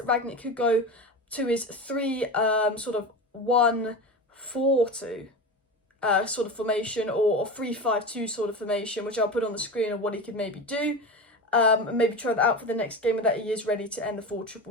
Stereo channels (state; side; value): normal; both; correlation 0.26